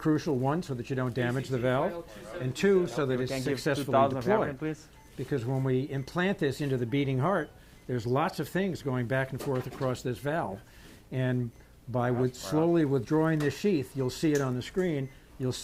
one, so that you don't damage the valve, and two, so that it's successfully deployed. Because when we implant this into the beating heart, there's lots of things going back and forth across this valve. And by slowly withdrawing this sheath, you'll see it on the screen, you'll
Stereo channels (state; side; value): identical; both; correlation 1.00